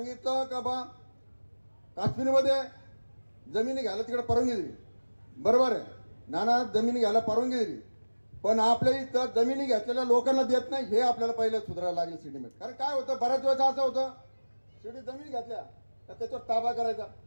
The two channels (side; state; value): both; inverted; correlation -1.00